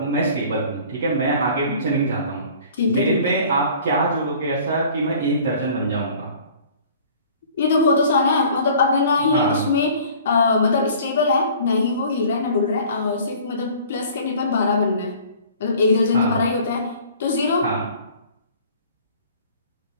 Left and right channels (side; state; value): both; inverted; correlation -0.49